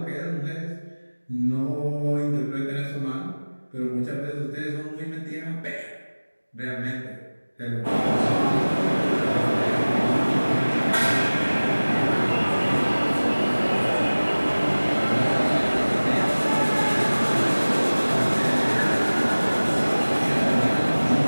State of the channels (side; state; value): both; inverted; correlation -1.00